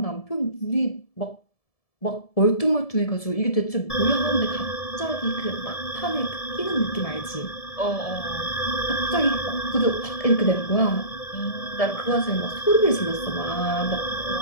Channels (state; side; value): late; right; 1.7 ms